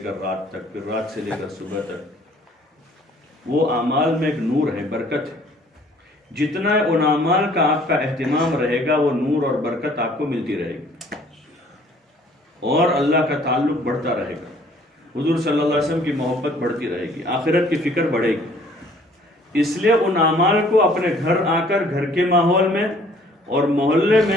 رات تک، پھر رات سے لے کر صبح تک۔ وہ اعمال میں ایک نور ہے، برکت ہے۔ جتنا ان اعمال کا آپ کا اہتمام رہے گا وہ نور اور برکت آپ کو ملتی رہے گی، اور اللہ کا تعلق بڑھتا رہے گا، حضور صلی اللہ علیہ وسلم کی محبت بڑھتی رہے گی، آخرت کی فکر بڑھے گی۔ اس لیے ان اعمال کو اپنے گھر آ کر، گھر کے ماحول میں اور محلے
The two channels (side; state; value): both; normal; correlation 0.57